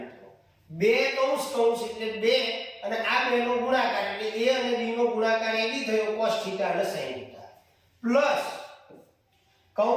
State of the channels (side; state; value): both; identical; correlation 1.00